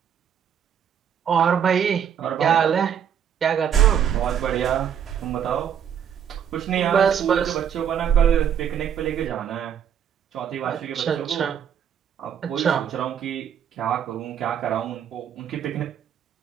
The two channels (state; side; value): quieter; left; 8.6 dB